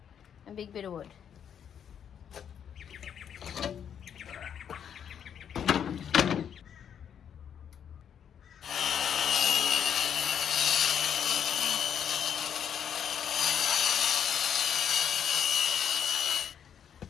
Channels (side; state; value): right; quieter; 8.5 dB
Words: and big bit of wood.